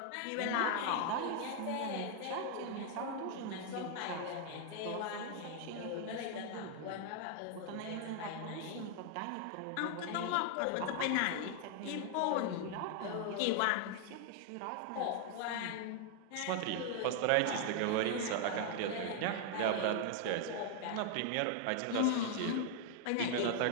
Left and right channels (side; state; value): both; different; correlation 0.00